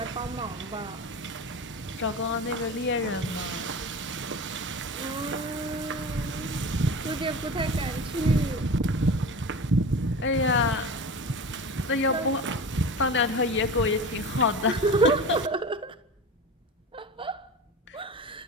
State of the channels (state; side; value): normal; both; correlation 0.31